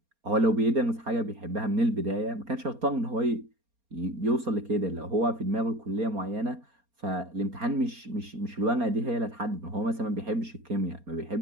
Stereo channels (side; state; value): left; late; 4.3 ms